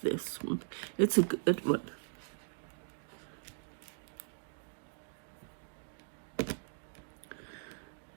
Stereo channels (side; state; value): left; silent; digital silence